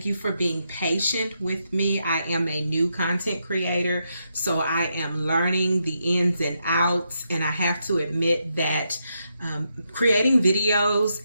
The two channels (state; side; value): inverted; both; correlation -0.82